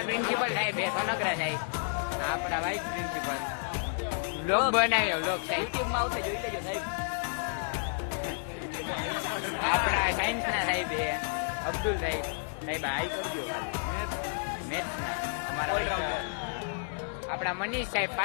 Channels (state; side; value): silent; right; digital silence